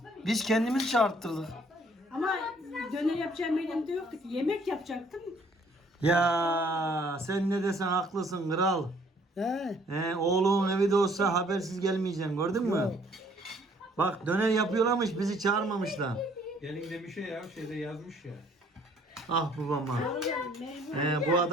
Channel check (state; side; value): normal; both; correlation 0.61